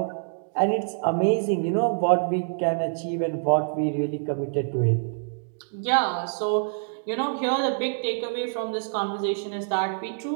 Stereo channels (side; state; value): left; silent; digital silence